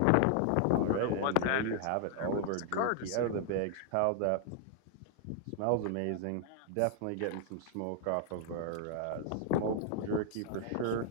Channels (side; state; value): both; different; correlation 0.00